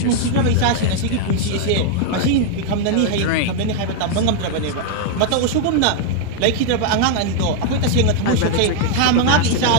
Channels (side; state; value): both; different; correlation 0.01